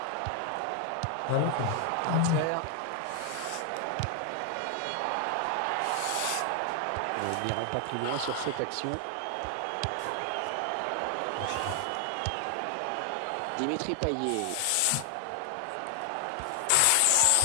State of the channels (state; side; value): different; both; correlation 0.00